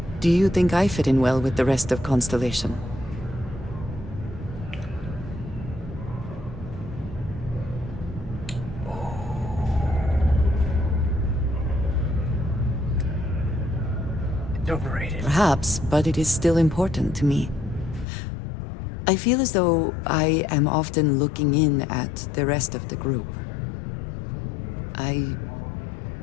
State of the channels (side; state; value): right; drops out; at 18.1 s